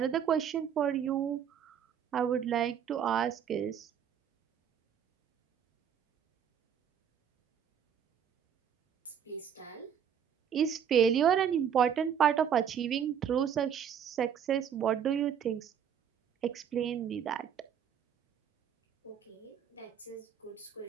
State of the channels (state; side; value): quieter; left; 8.4 dB